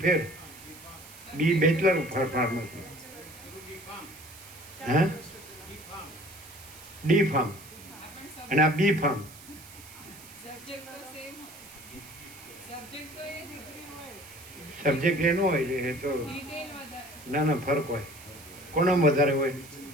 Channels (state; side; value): noise; right; hiss, 18 dB below the sound